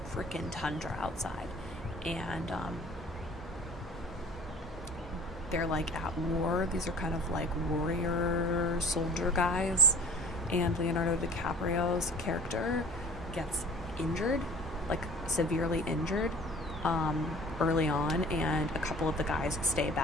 freaking tundra outside. And they're like at war. These are kind of like warrior soldier guys. And Leonardo DiCaprio's character gets injured, like severely injured, early on, and a couple of the guys stay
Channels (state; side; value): normal; both; correlation 0.46